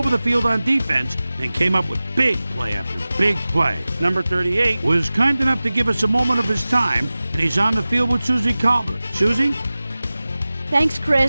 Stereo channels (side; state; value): both; inverted; correlation -0.97